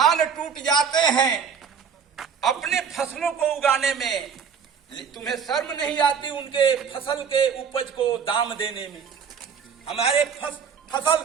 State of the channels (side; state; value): left; quieter; 6.7 dB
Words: टूट जाते हैं अपने फसलों को उगाने में, तुम्हें शर्म नहीं आती उनके फसल के उपज को दाम देने में। हमारे फसल